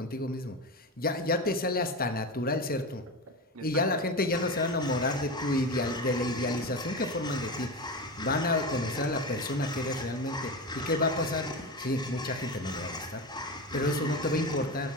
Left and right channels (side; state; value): both; normal; correlation 0.22